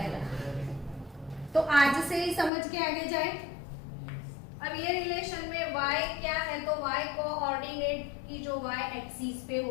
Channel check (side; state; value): right; drops out; at 2.5 s